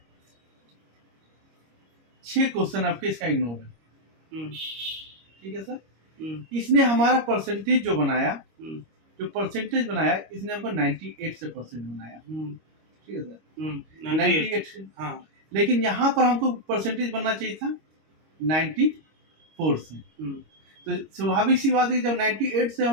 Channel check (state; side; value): late; left; 25 ms